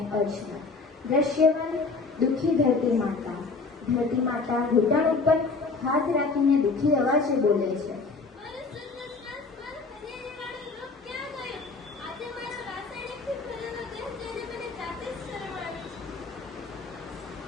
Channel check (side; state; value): right; quieter; 4.1 dB